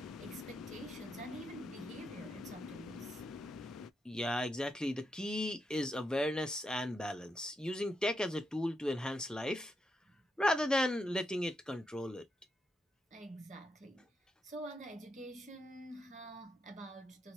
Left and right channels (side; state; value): both; normal; correlation 0.83